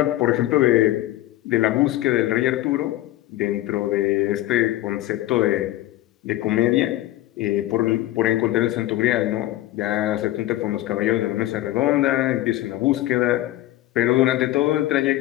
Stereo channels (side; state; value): right; quieter; 15.5 dB